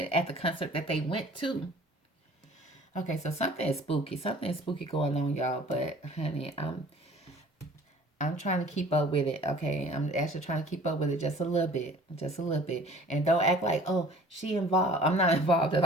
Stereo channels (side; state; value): both; normal; correlation 0.48